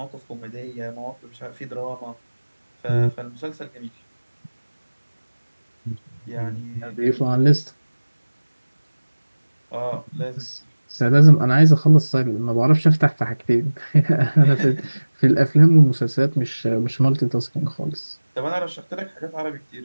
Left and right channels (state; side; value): inverted; both; correlation -1.00